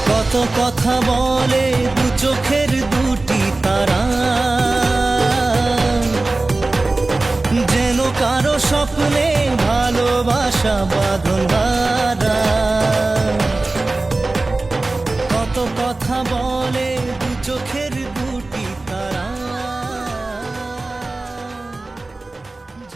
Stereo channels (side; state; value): left; quieter; 3.2 dB